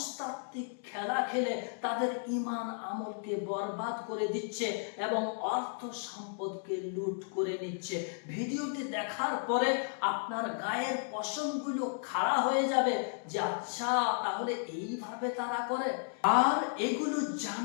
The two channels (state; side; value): silent; right; digital silence